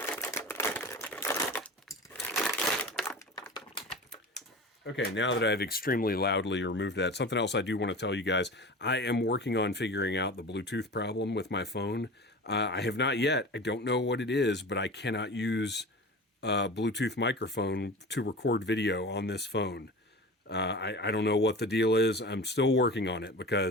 Okay, now that I've extremely loudly removed that, something else I do want to tell you guys. I am working on figuring out the Bluetooth problem with my phone. I have not yet. I don't know what it is, but I cannot use Bluetooth microphone to record video on this phone. I don't know what the deal is. I'm still working on it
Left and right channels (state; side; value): normal; both; correlation 0.34